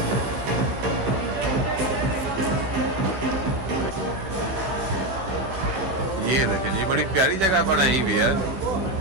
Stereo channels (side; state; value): left; late; 16 ms